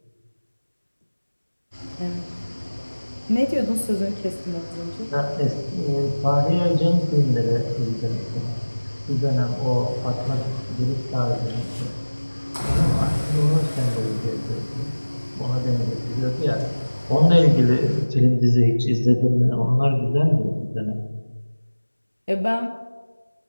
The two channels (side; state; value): both; inverted; correlation -1.00